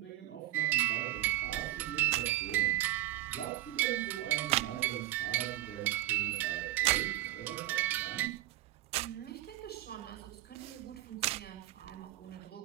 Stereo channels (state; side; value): quieter; left; 15.1 dB